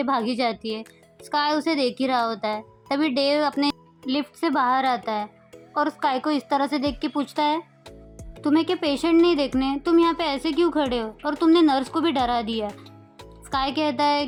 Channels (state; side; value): identical; both; correlation 1.00